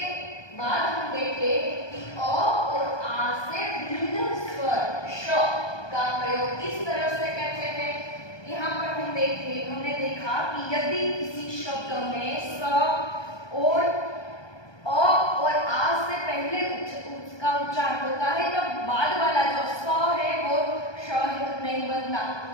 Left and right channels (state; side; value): late; right; 1.2 ms